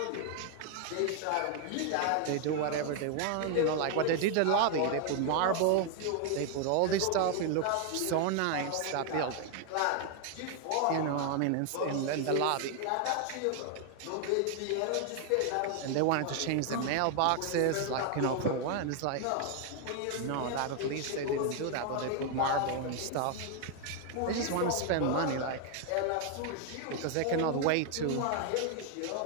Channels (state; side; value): different; both; correlation 0.00